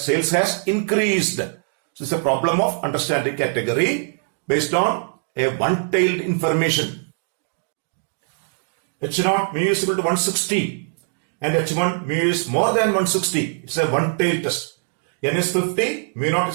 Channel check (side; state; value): left; silent; digital silence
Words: has increased. So it's a problem of understanding category based on a one-tailed information. H naught mu is equal to 160 and H1 mu is more than 160. It's a one-tailed test. N is 50, mu naught